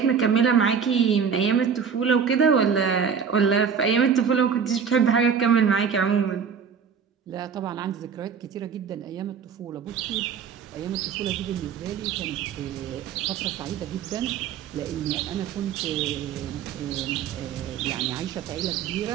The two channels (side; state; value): left; quieter; 6.8 dB